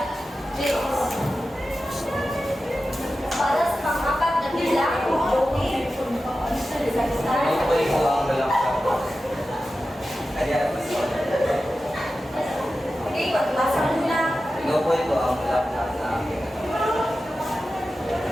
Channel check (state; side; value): normal; both; correlation 0.93